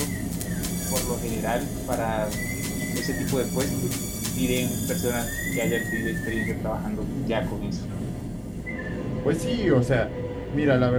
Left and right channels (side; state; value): both; identical; correlation 1.00